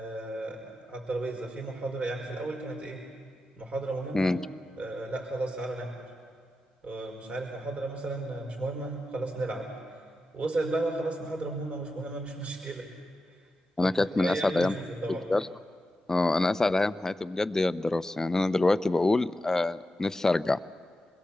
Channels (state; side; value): normal; both; correlation 0.91